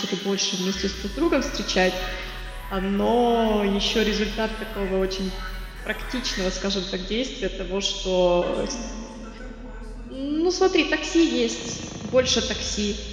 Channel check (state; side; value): identical; both; correlation 1.00